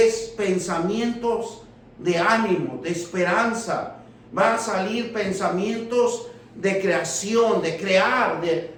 pensamientos de ánimo, de esperanza. Va a salir pensamientos de creación, de crear,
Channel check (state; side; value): identical; both; correlation 1.00